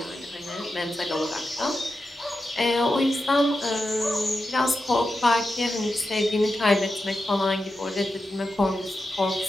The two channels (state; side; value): normal; both; correlation 0.89